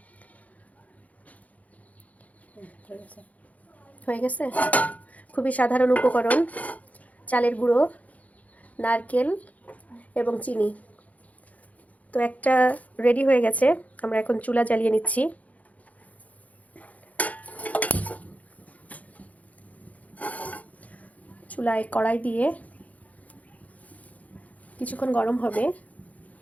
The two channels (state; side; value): late; right; 0.071 ms